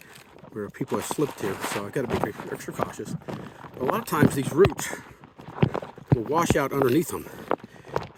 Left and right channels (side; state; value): both; identical; correlation 1.00